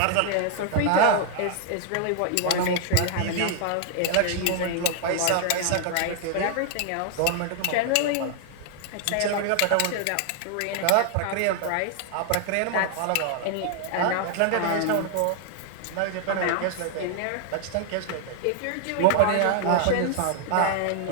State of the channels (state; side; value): different; both; correlation 0.00